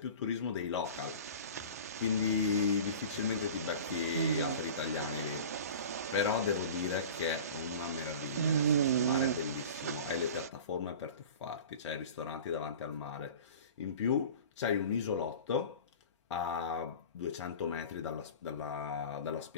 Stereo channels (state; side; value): inverted; both; correlation -0.38